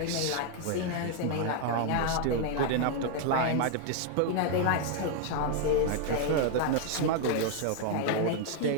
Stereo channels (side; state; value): both; different; correlation 0.00